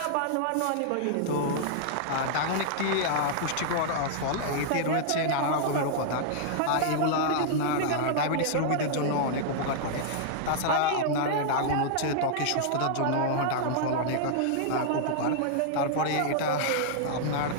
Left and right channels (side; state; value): both; different; correlation -0.01